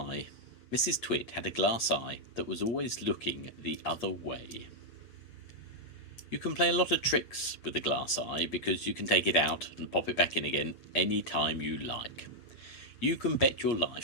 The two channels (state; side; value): late; right; 8.4 ms